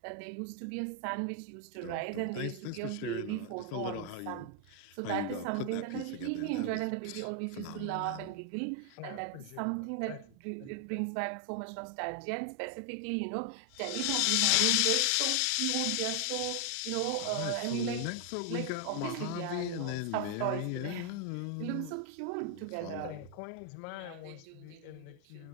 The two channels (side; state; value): both; different; correlation 0.00